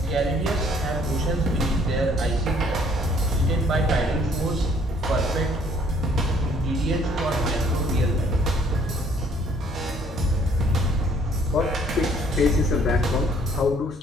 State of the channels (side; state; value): both; normal; correlation 0.61